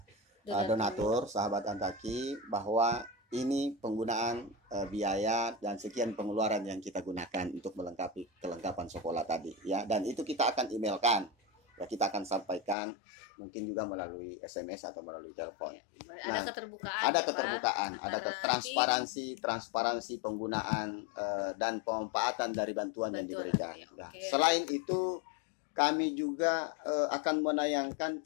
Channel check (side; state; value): right; drops out; at 12.8 s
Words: donatur sahabat Antaki bahwa ini penggunaan biaya dan sekian pengeluaran yang kita gunakan untuk melengkapi kelengkapan sekolah tadi ya, dan itu kita akan emailkan ya, kita akan sampaikan mungkin juga melalui SMS atau melalui telepon. Nah, ada keterbukaan, ada transparansi penggunaan dan pemanfaatan dari bantuan yang diberikan. Nah, selain itu kami juga akan menayangkan